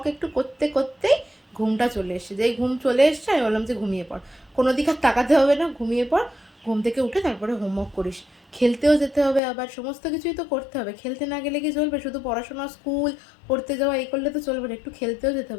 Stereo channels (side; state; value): right; drops out; at 9.4 s